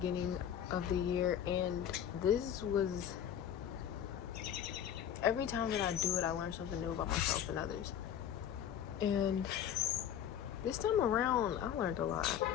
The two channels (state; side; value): quieter; right; 9.6 dB